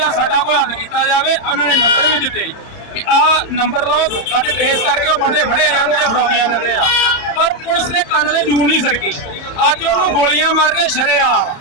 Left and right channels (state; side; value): late; right; 30 ms